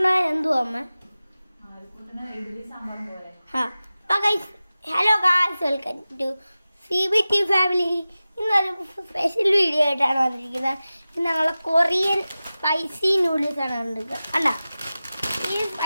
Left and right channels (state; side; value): inverted; both; correlation -0.96